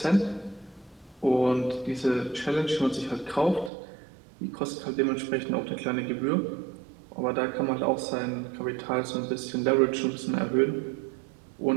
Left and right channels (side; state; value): left; drops out; at 3.7 s